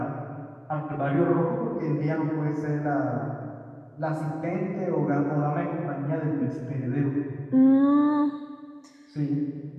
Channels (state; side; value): identical; both; correlation 1.00